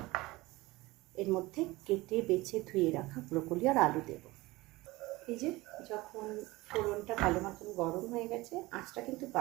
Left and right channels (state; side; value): quieter; left; 20.7 dB